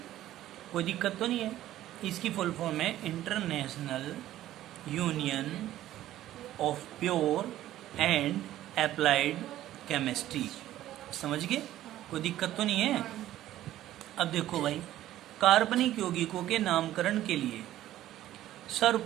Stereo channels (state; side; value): quieter; left; 13.6 dB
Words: कोई दिक्कत तो नहीं है? इसकी फुल फॉर्म है international union of pure and applied chemistry. समझ गए? कोई दिक्कत तो नहीं है? अब देखो भाई, कार्बनिक यौगिकों के नामकरण के लिए